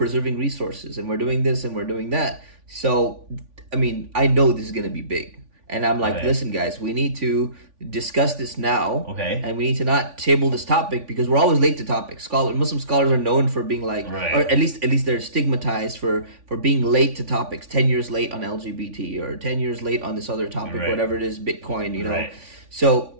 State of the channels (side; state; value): left; late; 3.5 ms